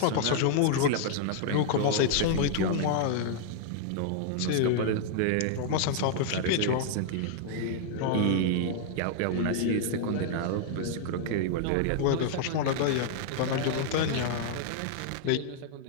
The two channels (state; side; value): different; both; correlation -0.01